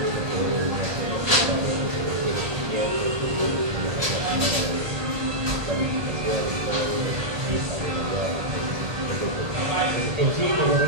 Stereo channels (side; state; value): left; late; 1.3 ms